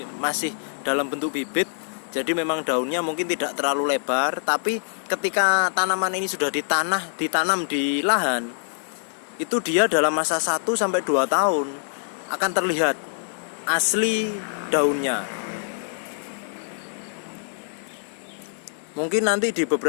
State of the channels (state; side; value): silent; right; digital silence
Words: masih dalam bentuk bibit. Jadi memang daunnya mungkin tidak terlalu lebar, tapi ketika tanaman ini sudah ditanam di lahan, itu dia dalam masa 1-2 tahun akan terlihat asli daunnya. Mungkin nanti di